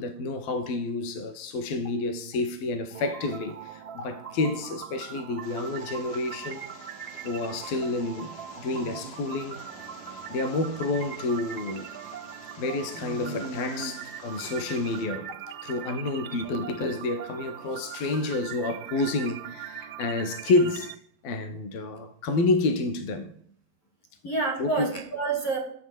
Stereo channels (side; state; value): right; late; 12 ms